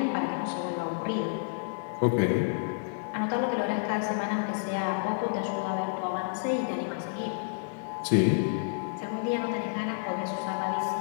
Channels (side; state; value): right; silent; digital silence